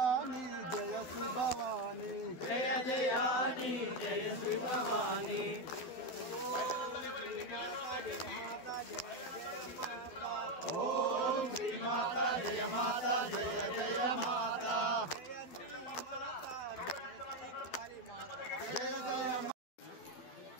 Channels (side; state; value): right; late; 12 ms